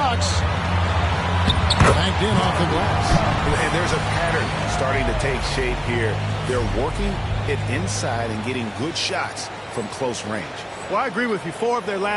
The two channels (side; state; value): both; identical; correlation 1.00